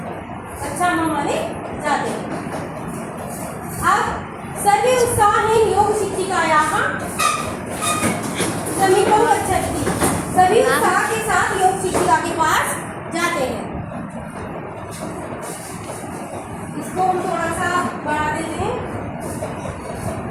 अच्छा हमारे जाते हैं। अब सर्वे उत्साहेन योग शिक्षिकायाः समीपं गच्छन्ति, सभी उत्साह के साथ योग शिक्षिका के पास जाते हैं। इसको हम थोड़ा सा बढ़ा देते हैं।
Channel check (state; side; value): identical; both; correlation 1.00